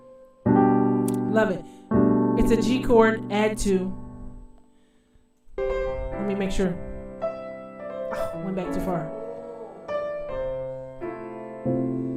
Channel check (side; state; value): both; identical; correlation 1.00